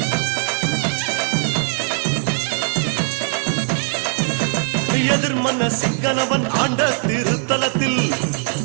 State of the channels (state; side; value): silent; left; digital silence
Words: எதிர்மன்ன சிங்கனவன் ஆண்ட திருத்தலத்தில்